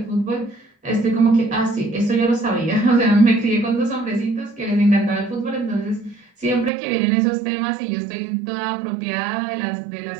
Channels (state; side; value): drops out; left; at 6.7 s